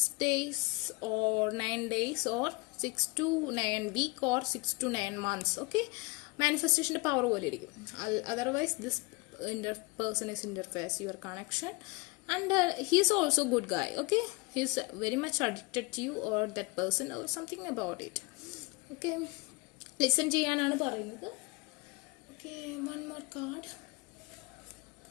days or 9 days or 6 to 9 week or 6 to 9 months. Okay, മാനിഫെസ്റ്റേഷന്റെ പവർ പോലെ ഇരിക്കും. Otherwise this person is interface your connection and he is also good guy. Okay, he is very much addicted to you or that person or something about it. Okay, listen ചെയ്യാനാണ് പറയുന്നത്. Okay, one more card.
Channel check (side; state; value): right; quieter; 27.0 dB